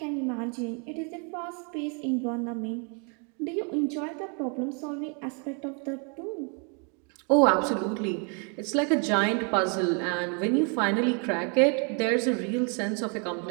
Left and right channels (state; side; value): quieter; left; 37.8 dB